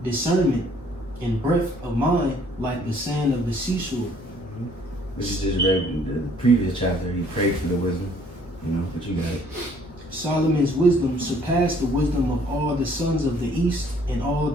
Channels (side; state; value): both; normal; correlation 0.61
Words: discernment and breadth of mind, like the sand of the seashore. Which is just read in the previous chapter. He prayed for the wisdom, but you got it. Solomon's wisdom surpassed the wisdom of all the sons of the east and all